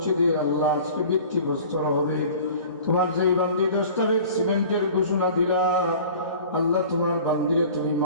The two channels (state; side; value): inverted; both; correlation -0.44